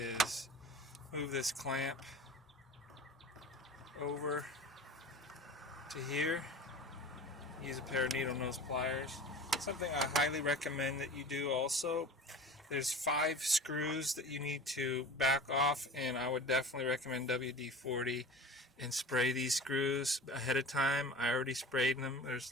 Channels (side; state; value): both; normal; correlation 0.37